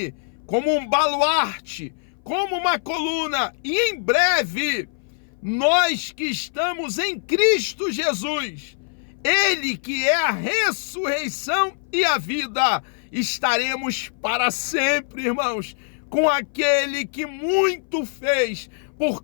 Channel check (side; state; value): right; silent; 59 dB below the other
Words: como um baluarte, como uma coluna, e em breve, nós que estamos em Cristo Jesus, Ele que é a ressurreição e a vida, estaremos para sempre, irmãos, com aquele que muito fez por